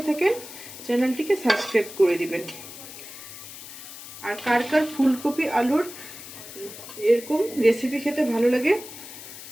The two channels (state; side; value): noise; left; hiss, 14 dB below the sound